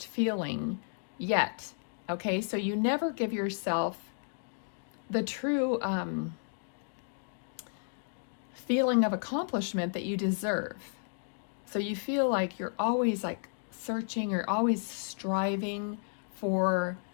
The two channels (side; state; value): right; silent; digital silence